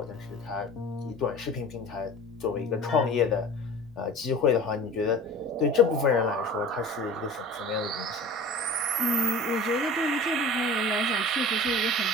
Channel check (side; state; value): both; normal; correlation 0.39